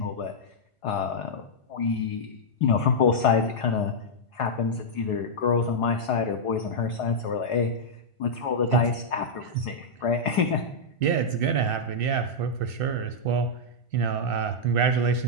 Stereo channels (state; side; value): late; right; 1.5 ms